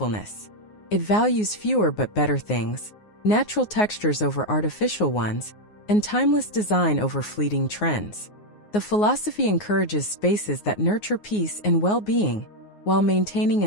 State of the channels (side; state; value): right; late; 9.6 ms